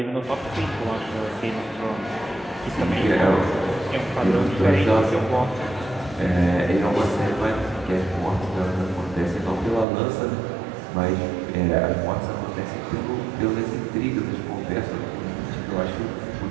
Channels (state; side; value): drops out; left; at 9.9 s